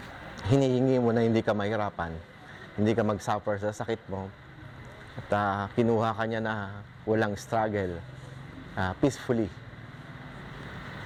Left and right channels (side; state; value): both; identical; correlation 1.00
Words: hinihingi mo na hindi ka mahirapan, hindi ka mag-suffer sa sakit mo. At kinuha ka niya na walang struggle, peacefully,